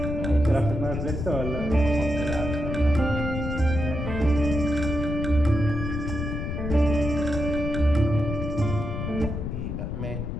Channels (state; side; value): noise; left; rumble, 4 dB below the sound